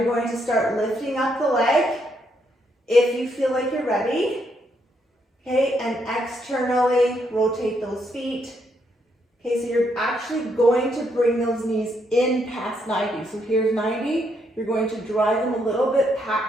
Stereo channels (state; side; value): normal; both; correlation 0.75